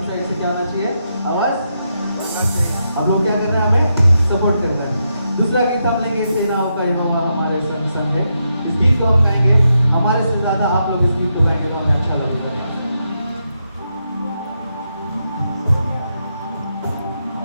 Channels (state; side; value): inverted; both; correlation -0.83